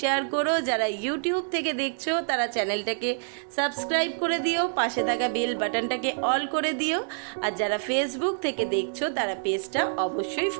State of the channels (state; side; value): silent; left; digital silence